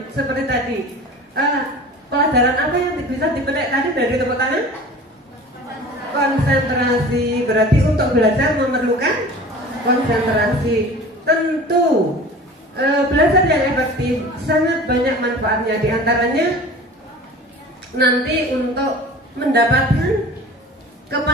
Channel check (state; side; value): normal; both; correlation 0.40